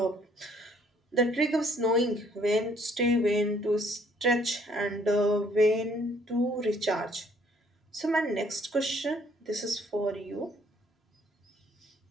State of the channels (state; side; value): normal; both; correlation 0.63